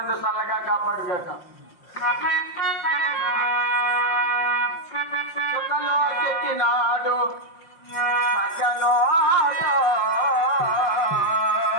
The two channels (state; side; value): late; right; 5.5 ms